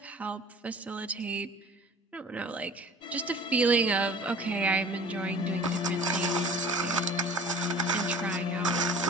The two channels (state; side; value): normal; both; correlation 0.45